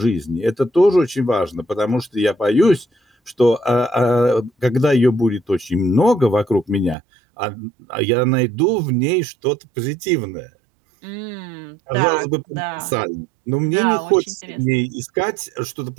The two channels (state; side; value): drops out; left; at 7.0 s